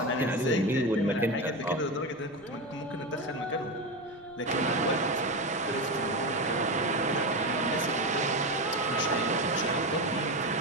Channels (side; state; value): right; noise; rumble, 27 dB below the sound